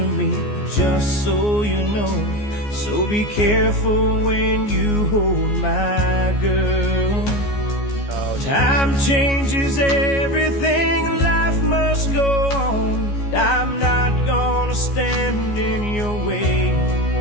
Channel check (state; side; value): late; right; 14 ms